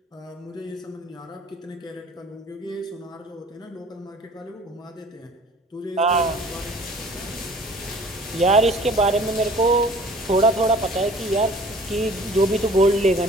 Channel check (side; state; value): both; normal; correlation 0.50